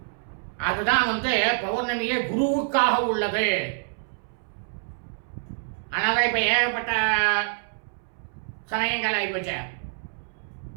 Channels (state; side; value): silent; left; 61 dB below the other